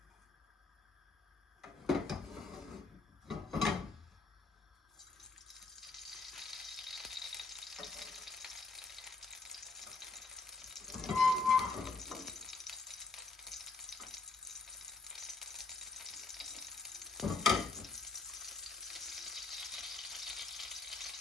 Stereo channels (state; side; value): quieter; right; 4.0 dB